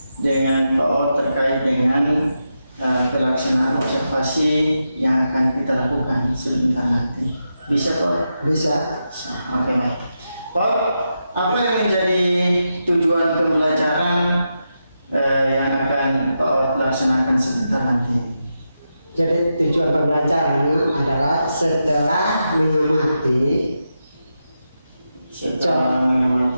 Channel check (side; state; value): both; inverted; correlation -0.87